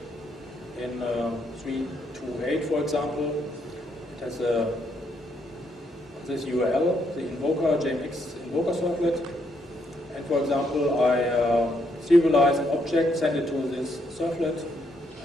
in 328, for example. It has this URL, the invoker, JMX invoker servlet. And for example, I serialize an object, send it to this servlet,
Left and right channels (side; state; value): both; normal; correlation 0.74